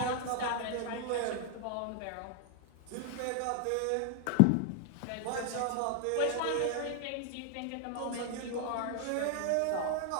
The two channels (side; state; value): both; different; correlation 0.00